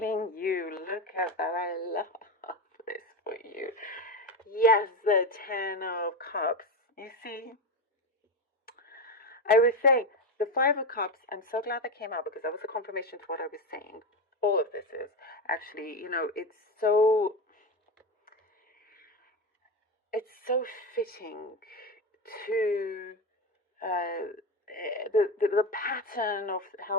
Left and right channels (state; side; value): normal; both; correlation 0.17